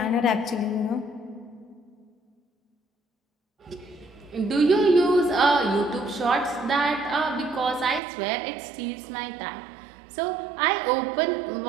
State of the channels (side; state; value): left; drops out; at 8.0 s